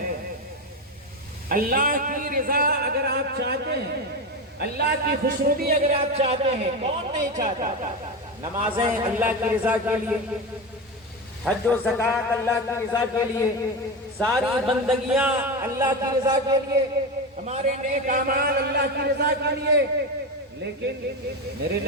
اللہ کی رضا اگر آپ چاہتے ہیں، اللہ کی خوشنودی اگر آپ چاہتے ہیں، کون نہیں چاہتا؟ نمازیں اللہ کی رضا کے لیے، حج و زکوٰۃ اللہ کی رضا کے لیے، ساری بندگیاں اللہ کی رضا کے لیے، ہمارے نیک اعمال اللہ کی رضا کے لیے۔ لیکن میرے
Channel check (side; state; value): both; normal; correlation 0.19